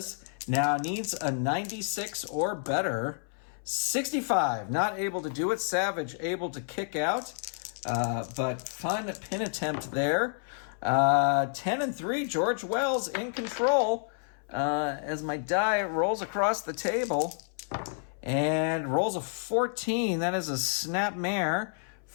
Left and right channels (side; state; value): right; silent; 58 dB below the other